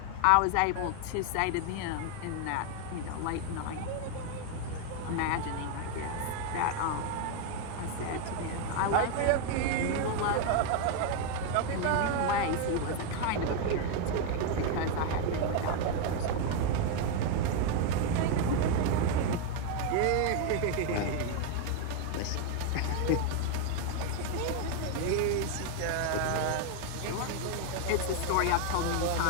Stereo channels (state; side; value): different; both; correlation 0.01